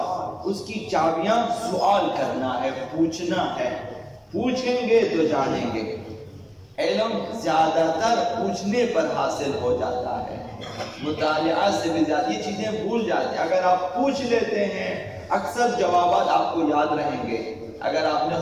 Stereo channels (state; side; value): identical; both; correlation 1.00